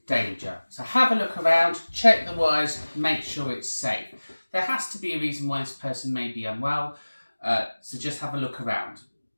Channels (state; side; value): inverted; both; correlation -1.00